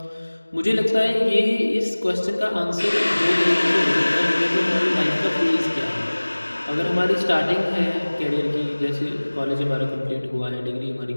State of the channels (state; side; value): inverted; both; correlation -1.00